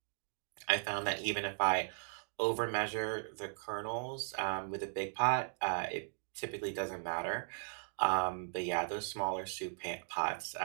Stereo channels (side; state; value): left; silent; digital silence